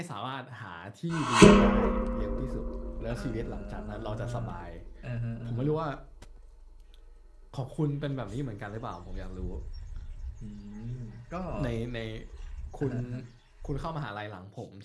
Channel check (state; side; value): identical; both; correlation 1.00